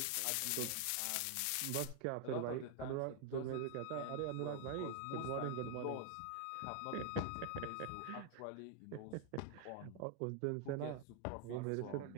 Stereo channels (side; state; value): both; different; correlation 0.00